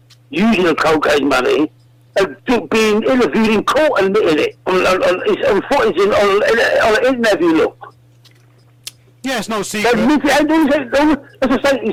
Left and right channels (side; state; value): both; identical; correlation 1.00